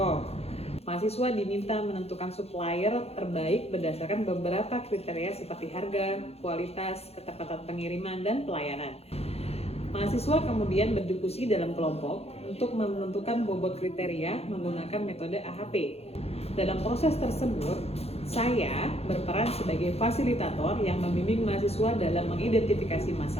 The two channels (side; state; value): right; late; 0.30 ms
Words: mahasiswa diminta menentukan supplier terbaik berdasarkan beberapa kriteria seperti harga, kualitas, ketepatan pengiriman, dan pelayanan. Mahasiswa kemudian berdiskusi dalam kelompok untuk menentukan bobot kriteria menggunakan metode AHP. Dalam proses tersebut, saya berperan sebagai fasilitator yang membimbing mahasiswa dalam mengidentifikasi